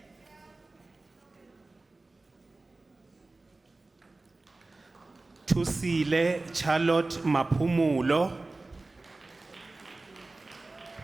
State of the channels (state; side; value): quieter; left; 3.2 dB